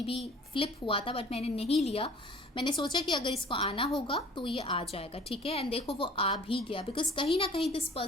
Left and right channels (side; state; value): both; normal; correlation 0.49